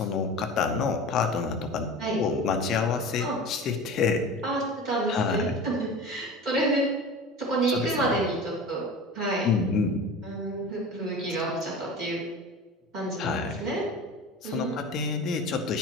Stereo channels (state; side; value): normal; both; correlation 0.34